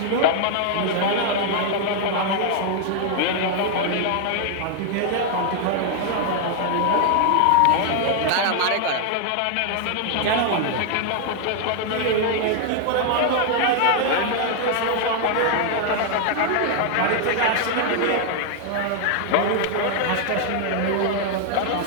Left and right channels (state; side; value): different; both; correlation 0.00